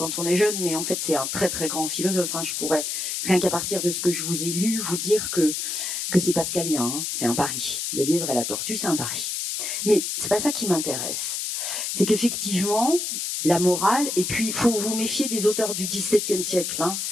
on est jeune, mais en fait, c'est un très, très grand philosophe, hein. Je pourrais, rien qu'à partir de ce que je vous ai lu, vous dire que c'est pascalien, hein. C'est un pari. Le lièvre et la tortue, c'est un pari. Mais c'est pas ça qui m'intéresse. C'est qu'effectivement, la morale, et puis il faut vous méfier des auteurs du XVIIe siècle, hein.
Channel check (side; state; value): left; noise; hiss, 2 dB below the sound